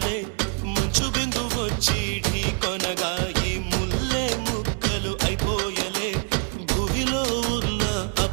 మంచు బిందు వచ్చి ఢీకొనగా ఈ ముల్లే ముక్కలు అయిపోయలే భూమిలో ఉన్న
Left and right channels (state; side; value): quieter; left; 38.6 dB